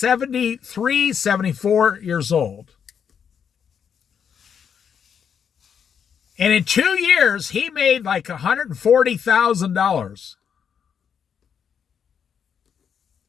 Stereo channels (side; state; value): right; quieter; 7.6 dB